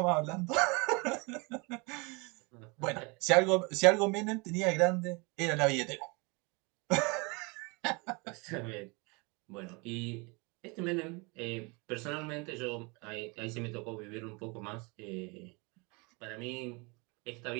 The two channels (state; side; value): quieter; left; 29.1 dB